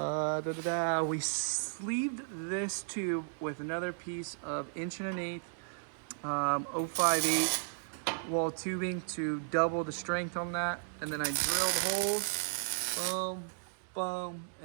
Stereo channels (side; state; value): left; silent; digital silence